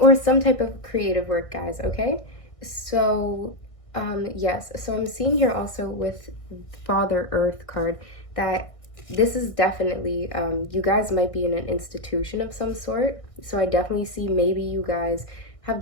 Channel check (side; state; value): right; late; 1.6 ms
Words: some type of creative work, guys, okay? So yes, so I'm seeing here also with Father Earth card that this is definitely, you guys might be in an institution of some sort. So I definitely see maybe you guys have